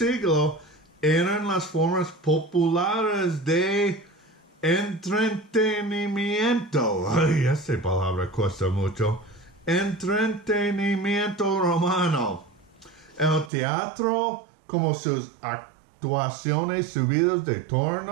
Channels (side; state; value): left; drops out; at 13.5 s